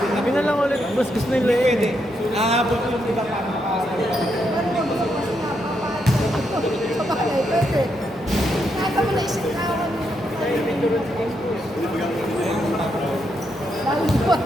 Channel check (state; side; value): normal; both; correlation 0.80